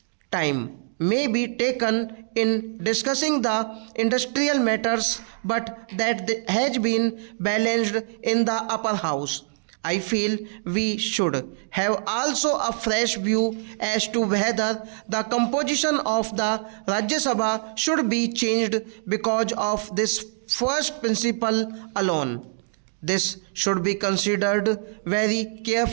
time may be taken in discussing the industrial matters, but that has been balanced in the upper house. I feel we should have also a fresh view as to whether the composition of the Rajya Sabha should be changed because of this first principle alone. This should be considered very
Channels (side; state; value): left; silent; digital silence